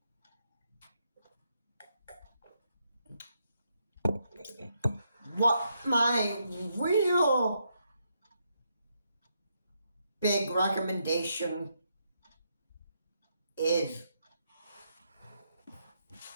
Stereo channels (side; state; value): both; inverted; correlation -0.79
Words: What my real big recommendation is,